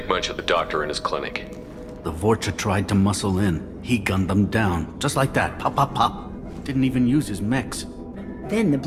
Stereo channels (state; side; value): identical; both; correlation 1.00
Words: much of the doctor in his clinic. The Vorcha tried to muscle in. He gunned them down. Just like that. Pop, pop, pop. Didn't even use his mechs. Then the